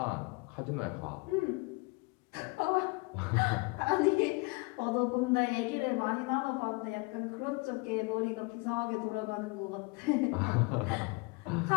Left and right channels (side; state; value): right; quieter; 27.5 dB